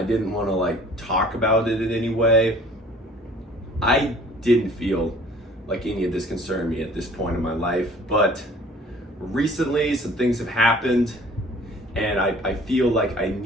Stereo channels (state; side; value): normal; both; correlation 0.51